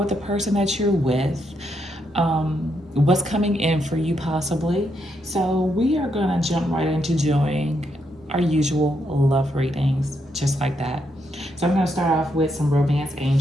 the person that you're with, what's coming in for you possibly. So we are gonna jump right into doing our usual love readings just like that. So I'm gonna start off with some romance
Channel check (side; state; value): both; normal; correlation 0.79